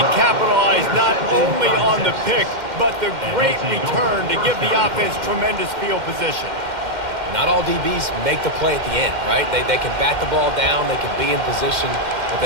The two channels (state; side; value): late; left; 2.1 ms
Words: capitalize not only on the pick, but the great return to give the offense tremendous field position. Not all DBs make the play at the end, right? They can bat the ball down, they can be in position, but